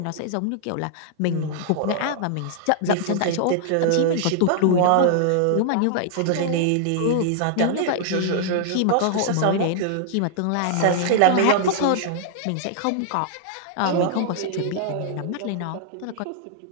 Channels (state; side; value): different; both; correlation -0.01